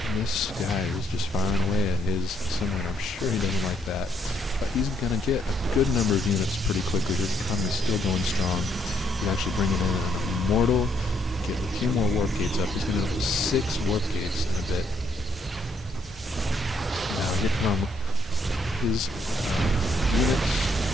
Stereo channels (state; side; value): normal; both; correlation 0.72